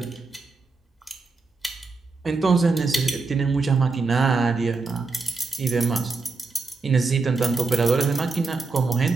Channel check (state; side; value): quieter; left; 4.0 dB